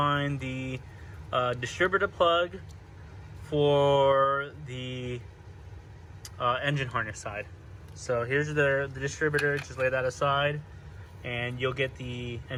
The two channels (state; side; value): identical; both; correlation 1.00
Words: the distributor plug for the engine harness side. So here's the distributor. Just lay that aside and you'll get the